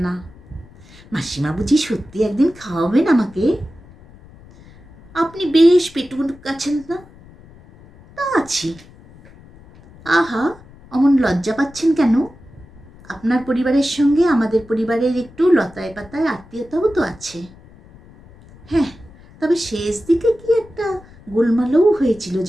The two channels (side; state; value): left; noise; rumble, 23 dB below the sound